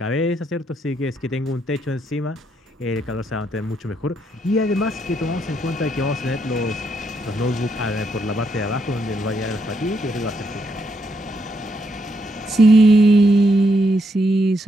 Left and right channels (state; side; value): normal; both; correlation 0.77